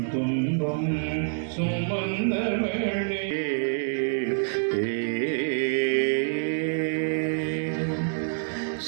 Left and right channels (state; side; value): silent; left; digital silence